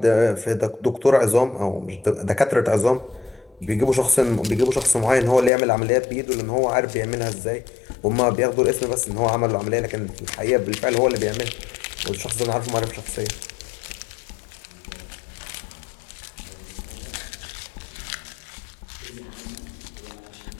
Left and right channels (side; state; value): right; drops out; at 5.5 s